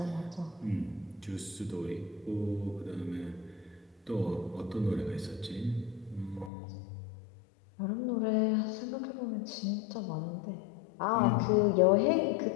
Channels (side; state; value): right; drops out; at 6.5 s